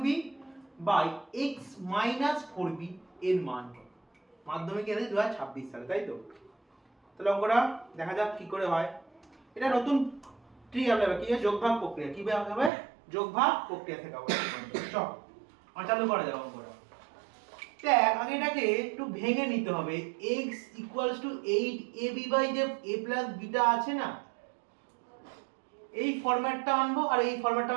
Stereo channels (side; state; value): left; drops out; at 12.7 s